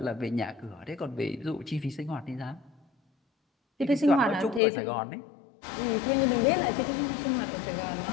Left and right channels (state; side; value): drops out; right; at 4.6 s